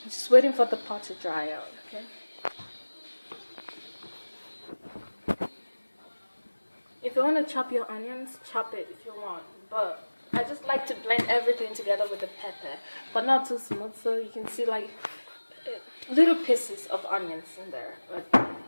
Just waiting for the pot to dry out, okay? If you want to chop your onions, chop it if you want. But I just like to blend everything together with the pepper, but not too smooth, so you can see like little pieces of onions in there. But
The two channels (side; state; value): both; inverted; correlation -1.00